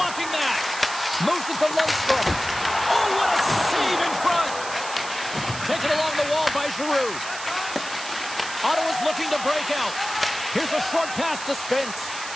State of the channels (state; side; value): noise; right; hiss, 10 dB below the sound